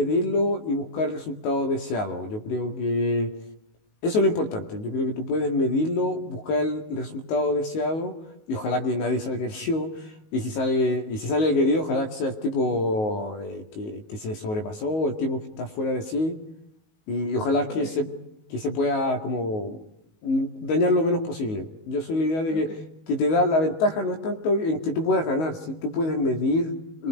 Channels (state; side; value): late; right; 19 ms